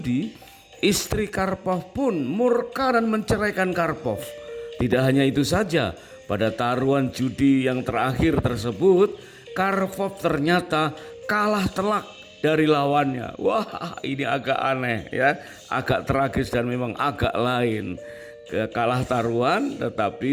istri Karpov pun murka dan menceraikan Karpov. Tidak hanya itu saja, pada taruhan judi yang terakhir tersebut, Karpov ternyata kalah telak dari lawannya. Wah, ini agak aneh, ya, agak tragis dan memang agak lain. Kalah taruhan,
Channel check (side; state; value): both; identical; correlation 1.00